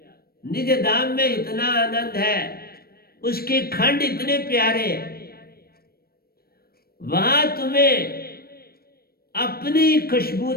निज धाम में इतना आनंद है, उसके खंड इतने प्यारे, वहां तुम्हें अपनी खुशबू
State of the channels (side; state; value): right; late; 0.44 ms